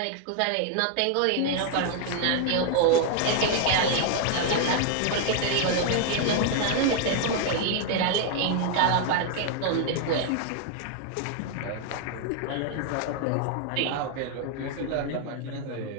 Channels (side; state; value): both; different; correlation 0.00